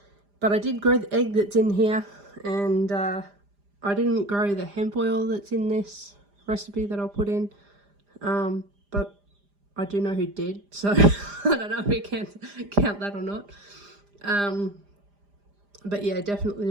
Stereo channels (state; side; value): late; left; 5.0 ms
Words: But I did grow the egg that's in here. And I didn't grow the hemp oil that's in this recipe that I'll put in. But I do know who did. So I don't know if we can count that or not. But yeah,